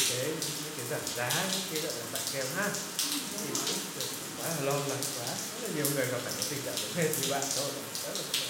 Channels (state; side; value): identical; both; correlation 1.00